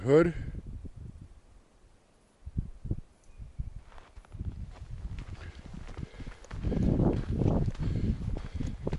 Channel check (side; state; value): both; identical; correlation 1.00